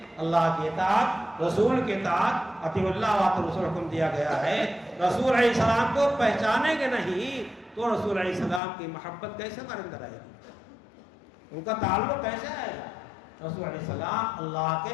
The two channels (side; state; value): right; drops out; at 8.6 s